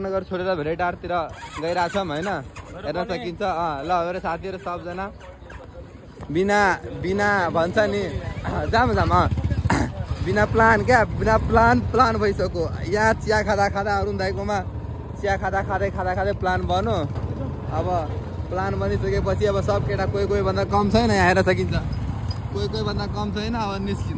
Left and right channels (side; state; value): both; identical; correlation 1.00